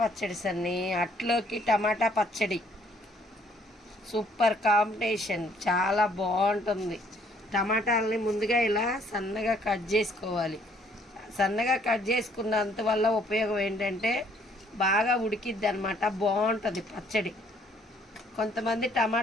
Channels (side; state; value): both; normal; correlation 0.63